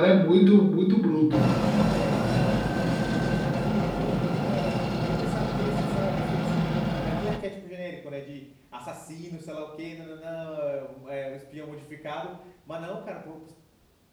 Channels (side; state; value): both; identical; correlation 1.00